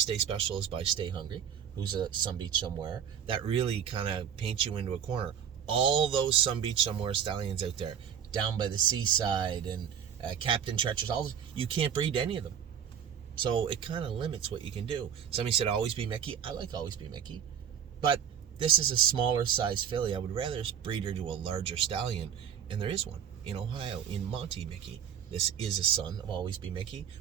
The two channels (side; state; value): left; quieter; 8.4 dB